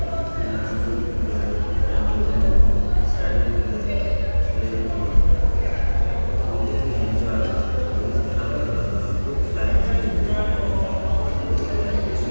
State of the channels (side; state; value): both; inverted; correlation -1.00